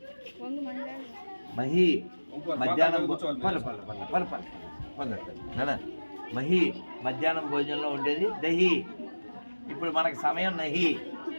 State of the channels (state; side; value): inverted; both; correlation -1.00